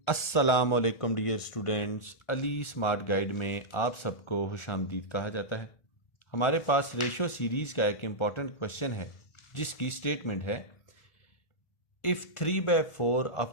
अस्सलाम वालेकुम dear students. Ali smart guide में आप सबको खुशामदीद कहा जाता है। हमारे पास रेशो सीरीज़ का एक इम्पॉर्टेंट क्वेश्चन है जिसकी स्टेटमेंट है, if 3/4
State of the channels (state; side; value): late; right; 1.4 ms